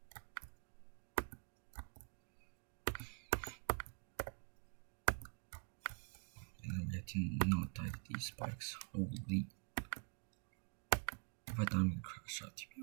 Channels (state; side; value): quieter; left; 36.8 dB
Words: And then we have to not die to these spikes. Holy. If I die, I'm gonna crash out, to